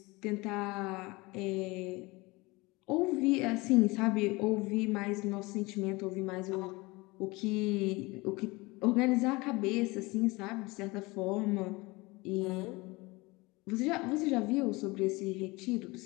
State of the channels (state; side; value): quieter; right; 23.4 dB